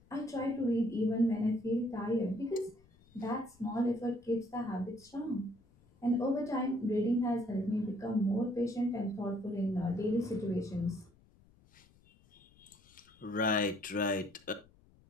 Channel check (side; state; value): left; noise; rumble, 29 dB below the sound